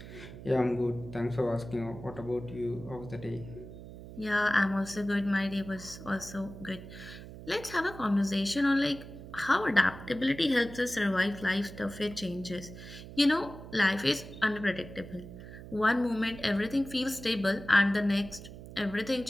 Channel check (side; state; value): right; noise; hum, 14 dB below the sound